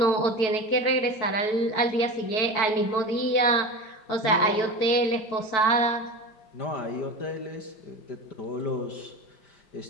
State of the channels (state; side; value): late; right; 4.6 ms